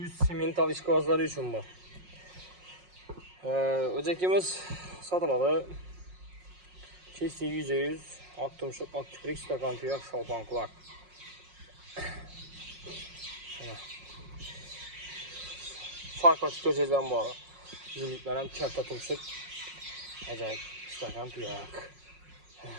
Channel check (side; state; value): left; late; 5.5 ms